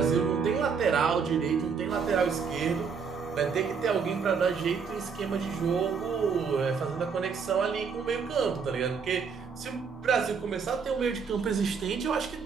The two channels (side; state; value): left; quieter; 5.9 dB